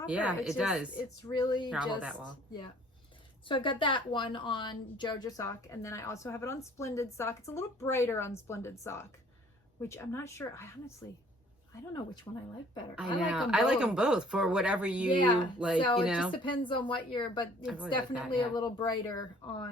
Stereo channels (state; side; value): normal; both; correlation 0.56